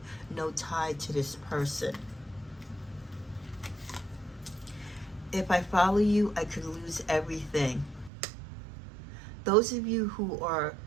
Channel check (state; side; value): drops out; left; at 8.1 s